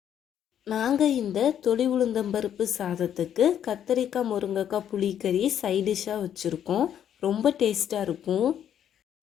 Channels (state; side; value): quieter; right; 9.7 dB